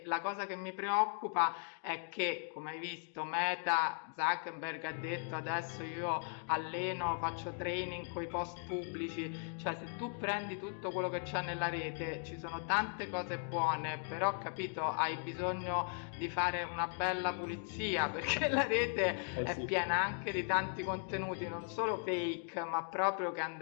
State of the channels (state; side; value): silent; right; 53 dB below the other